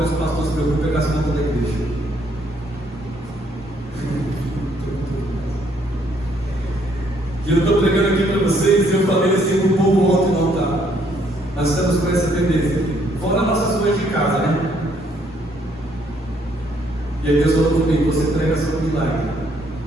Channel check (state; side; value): normal; both; correlation 0.68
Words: que o pastor se preocupa é com as contas da igreja. E eu estou pregando aqui para vocês, e eu falei assim para o povo ontem no altar. Nós estamos com essa tendência, fora nossas coisas de casa, né? E aí Deus falou comigo, você prega sobre milagre.